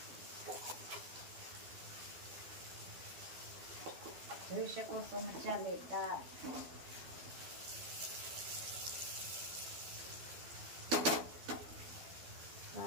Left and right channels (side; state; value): left; late; 12 ms